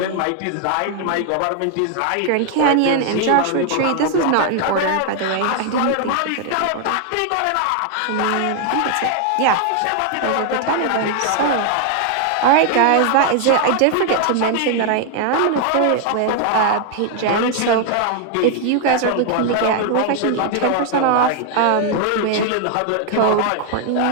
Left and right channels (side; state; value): both; different; correlation 0.00